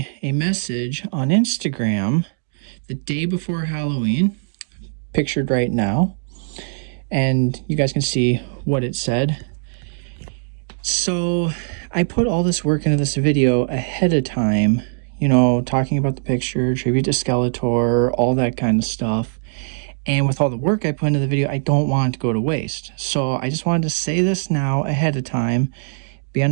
a message on Instagram the day before Halloween, pictured right now, and you guys can see what it said. So I put all this work into this video ahead of time, you know, talking about the picture, tribute to Skeletor, all that kind of stuff. And with all the work I put into the video, I don't want it to go to waste. So I just wanted to say this now ahead of time.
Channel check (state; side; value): silent; left; digital silence